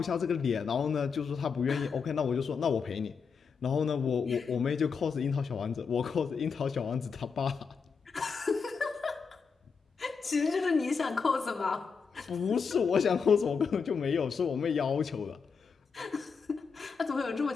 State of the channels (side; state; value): right; quieter; 5.6 dB